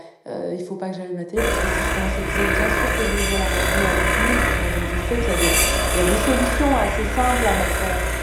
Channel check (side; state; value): both; identical; correlation 1.00